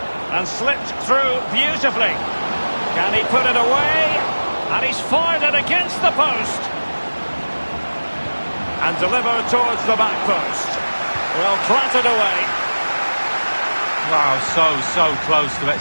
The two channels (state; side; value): inverted; both; correlation -1.00